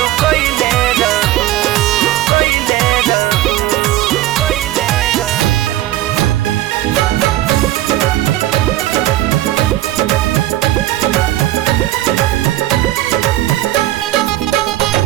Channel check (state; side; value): quieter; left; 15.0 dB